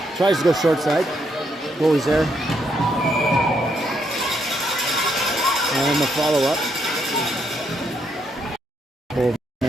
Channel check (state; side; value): normal; both; correlation 0.76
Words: tries to go short side. Goalie's there. And the follow-up.